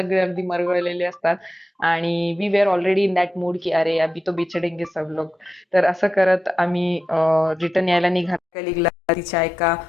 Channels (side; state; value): both; normal; correlation 0.91